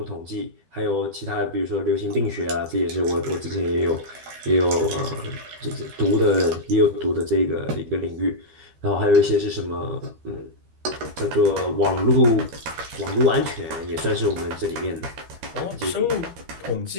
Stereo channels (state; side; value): late; left; 13 ms